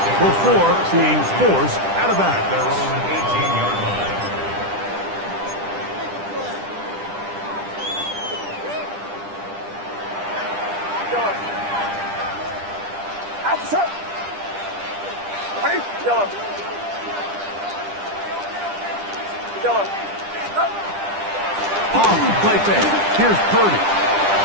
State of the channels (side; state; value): left; late; 10 ms